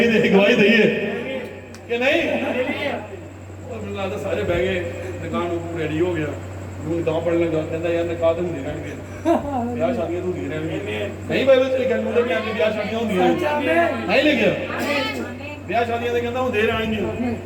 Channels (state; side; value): identical; both; correlation 1.00